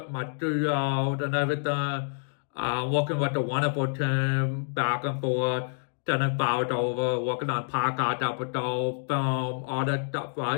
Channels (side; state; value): right; silent; 59 dB below the other